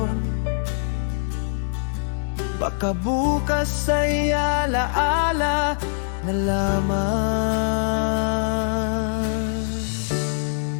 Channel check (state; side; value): silent; right; digital silence